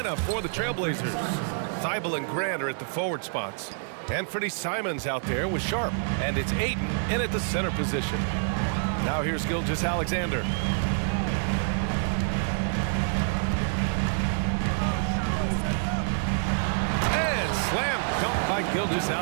for the Trailblazers. Thibault and Grant are at the forward spots. Anthony Simons out there with Sharp. And it's Aiden in at the center position. Now here's Gilgeous Alexander. And slam dunk by Gilgeous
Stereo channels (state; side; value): silent; left; digital silence